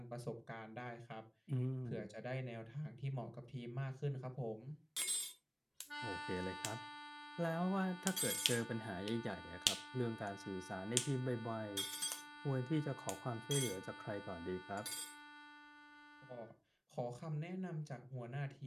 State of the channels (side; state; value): both; identical; correlation 1.00